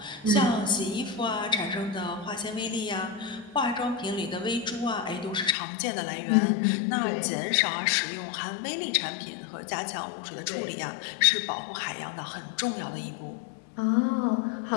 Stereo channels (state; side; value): drops out; right; at 5.6 s